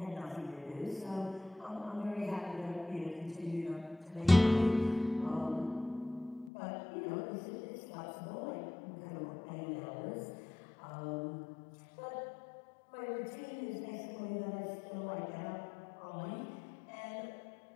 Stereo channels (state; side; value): drops out; right; at 6.5 s